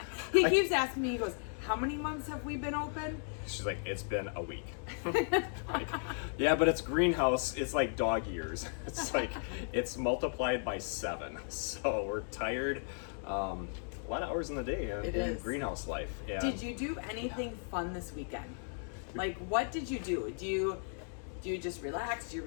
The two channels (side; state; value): right; silent; 54 dB below the other